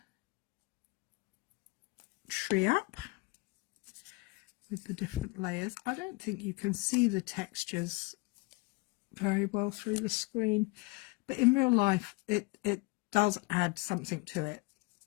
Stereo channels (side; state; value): right; quieter; 26.0 dB